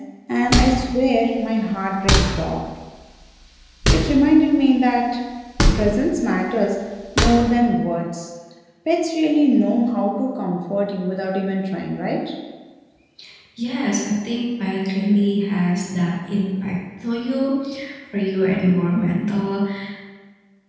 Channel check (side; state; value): both; identical; correlation 1.00